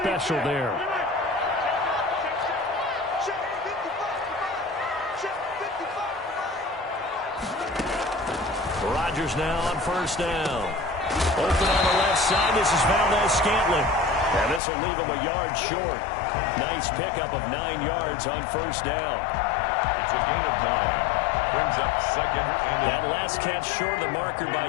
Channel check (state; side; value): drops out; right; at 14.6 s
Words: there. Rodgers now on 1st down. Open on the left side. This is Valdes-Scantling. And this will leave him a yard short. Nice pickup of 9 yards on 1st down. It's a gain of 9. Brings up 2nd and that last catch short of the marker by